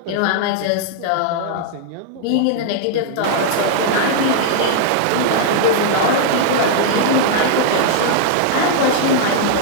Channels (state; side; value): different; both; correlation -0.01